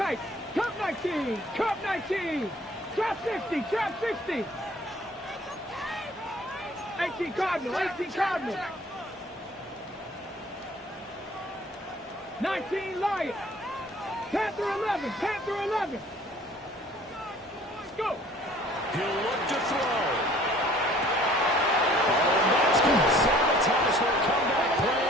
Cup 19. Cup 19. Trap 60. Trap 60. 18 Cardinal. 18 Cardinal. 19 Lion. Panther 11. Panther 11. Let's go. He'll look to throw. Oh, that's going to sabotage their comeback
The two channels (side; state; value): both; normal; correlation 0.53